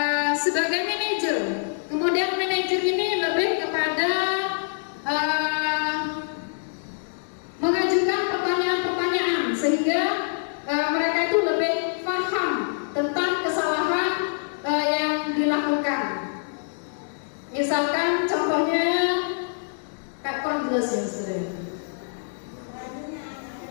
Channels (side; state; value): right; silent; digital silence